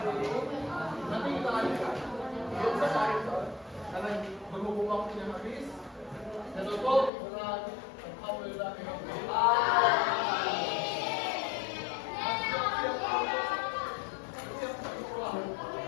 ini. Nanti kita lanjutkan. Belum selesai karena berhubung waktunya habis. Dan tutup dengan alhamdulillah.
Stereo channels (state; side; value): drops out; right; at 7.1 s